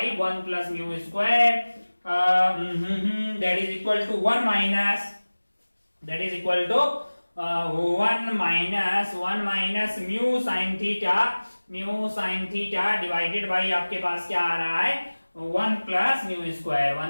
1 plus mu square that is equal to 1 minus, that is equal to 1 minus mu sine theta divided by आपके पास क्या आ रहा है 1 plus mu square,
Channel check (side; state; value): both; inverted; correlation -1.00